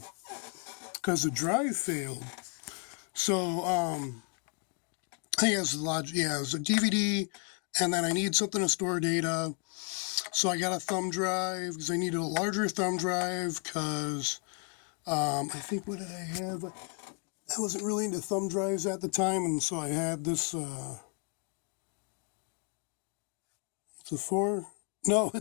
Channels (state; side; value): quieter; right; 34.9 dB